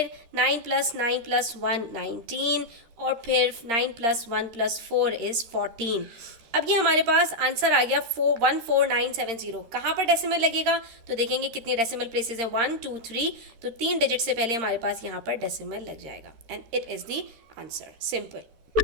9 + 9 + 1 19, और फिर 9 + 1 + 4 is 14। अब ये हमारे पास आंसर आ गया 14970। कहाँ पर डेसिमल लगेगा, तो देखेंगे कितनी डेसिमल प्लेसेस हैं, 1 2 3, तो 3 डिजिट से पहले हमारे पास यहाँ पर डेसिमल लग जाएगा and it is the answer, simple.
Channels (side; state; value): left; late; 13 ms